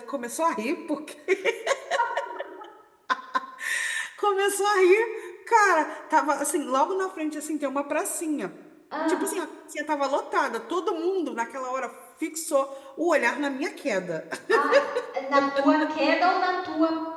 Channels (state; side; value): identical; both; correlation 1.00